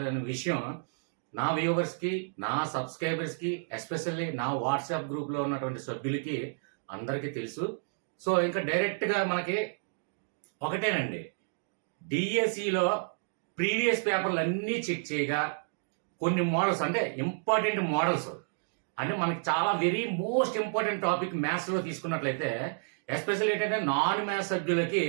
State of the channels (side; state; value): left; silent; digital silence